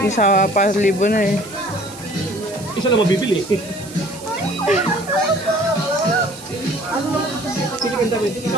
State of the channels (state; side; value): noise; right; hiss, 17 dB below the sound